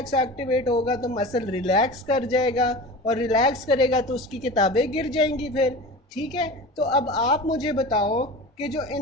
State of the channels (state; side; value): normal; both; correlation 0.33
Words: एक्टिवेट होगा तो मसल रिलैक्स कर जाएगा, और रिलैक्स करेगा तो उसकी किताबें गिर जाएंगी फिर। ठीक है, तो अब आप मुझे बताओ कि जो